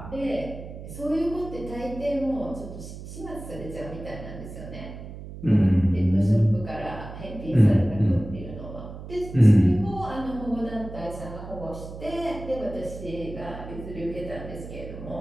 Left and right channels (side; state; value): right; noise; hum, 12 dB below the sound